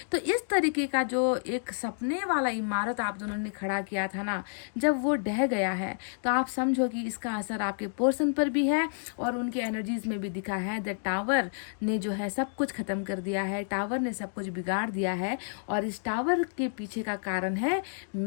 तो इस तरीके का जो एक सपने वाला इमारत आप दोनों ने खड़ा किया था, जब वो ढह गया है तो आप समझो कि इसका असर आपके पर्सन पर भी है और उनके एनर्जीज में भी दिखा है। द टावर ने जो है सब कुछ खत्म कर दिया है, टावर ने सब कुछ बिगाड़ दिया है, और इस टावर के पीछे का कारण है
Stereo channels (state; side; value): silent; right; digital silence